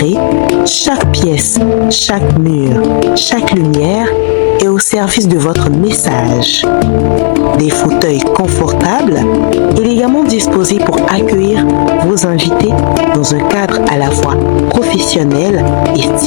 chaque pièce, chaque mur, chaque lumière est au service de votre message. Des fauteuils confortables, élégamment disposés pour accueillir vos invités dans un cadre à la fois professionnel et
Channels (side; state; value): right; silent; digital silence